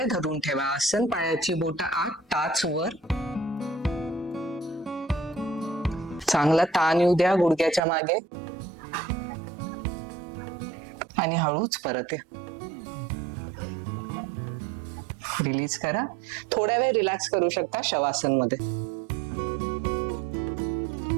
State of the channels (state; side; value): drops out; left; at 7.8 s